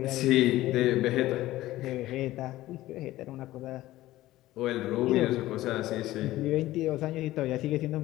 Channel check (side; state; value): right; quieter; 16.1 dB